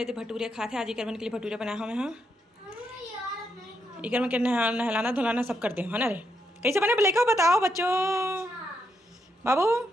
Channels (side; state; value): both; normal; correlation 0.80